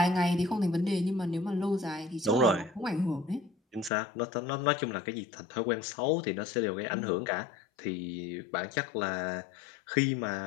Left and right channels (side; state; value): right; drops out; at 3.9 s